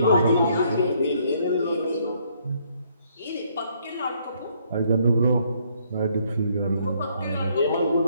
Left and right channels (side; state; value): both; inverted; correlation -0.68